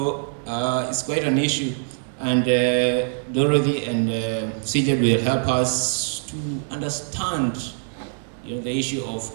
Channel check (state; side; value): silent; left; 63 dB below the other